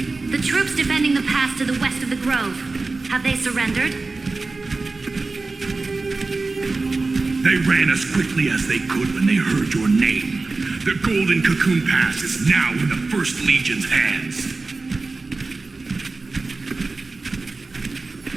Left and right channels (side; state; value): left; quieter; 3.7 dB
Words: The troops defending the pass to the west of the grove, have they surrendered? They ran as quickly as they could when they heard your name. The Golden Cocoon Pass is now in the First Legion's hands.